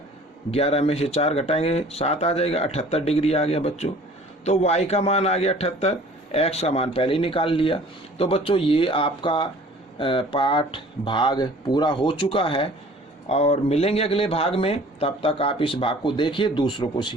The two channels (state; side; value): normal; both; correlation 0.49